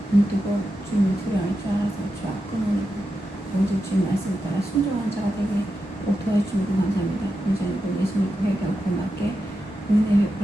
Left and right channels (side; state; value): both; normal; correlation 0.89